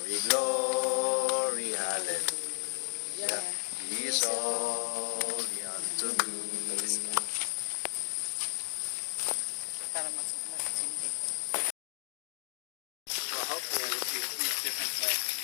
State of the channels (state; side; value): silent; right; digital silence